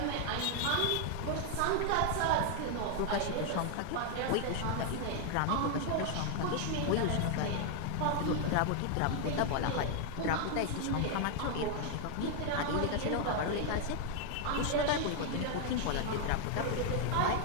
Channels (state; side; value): different; both; correlation 0.00